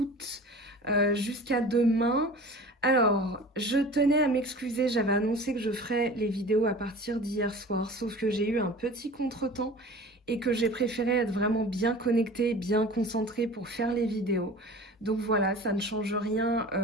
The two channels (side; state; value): both; normal; correlation 0.40